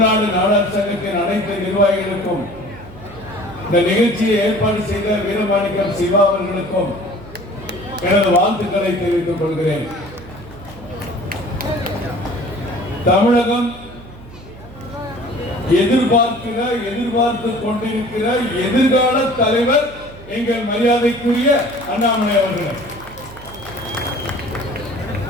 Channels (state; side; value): noise; right; hum, 18 dB below the sound